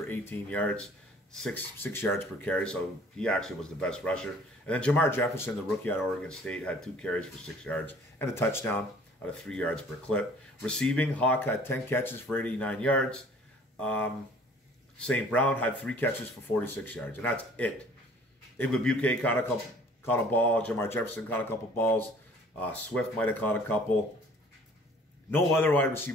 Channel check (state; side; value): normal; both; correlation 0.53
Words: 18 yards, 6 yards per carry, so he actually was the best rusher. And then Jamar Jefferson, the rookie out of Oregon State, had 2 carries for 6 yards and a touchdown out of 3 yards per clip. Receiving, Hawk had 10 catches for 89 yards. St. Brown had 3 catches for 46 yards, and that's it. Igwebuike caught a ball. Jamar Jefferson caught a couple balls. Swift might have caught a couple. No other wide